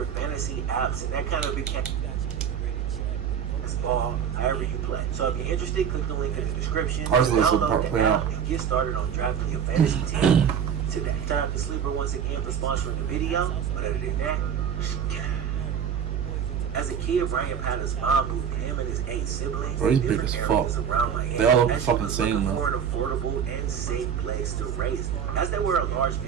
fantasy apps, and that kind of became ball, however you play. So if you're interested, click the link in the description. Download the app and get started on drafting your fantasy team today. Time for Sleeper once again for sponsoring the video. But other than that, as a kid, Brian Patton's mom moved him and his 8 siblings Bro, to he's big different as areas fuck. around Miami. They all look as she fucking was same, looking though. for an affordable and safe place to raise them. As they were a large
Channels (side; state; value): left; quieter; 8.0 dB